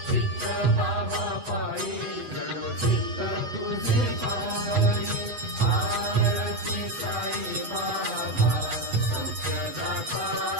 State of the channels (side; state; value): left; late; 8.0 ms